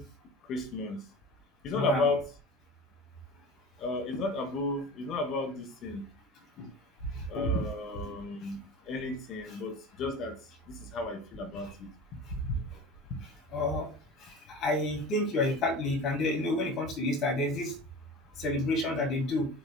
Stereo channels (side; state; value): both; normal; correlation 0.35